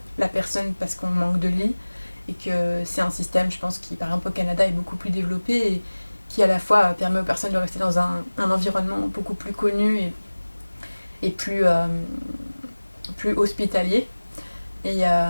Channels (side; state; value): both; inverted; correlation -1.00